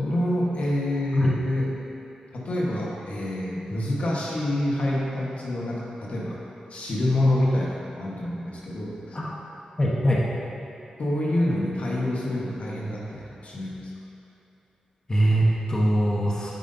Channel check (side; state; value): both; normal; correlation 0.91